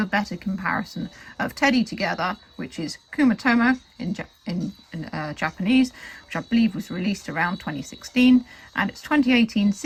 better comparison of Teddy Together, which is Kuma-Tomo in Japanese, which I believe was released around 2016, and its 2018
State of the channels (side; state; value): both; identical; correlation 1.00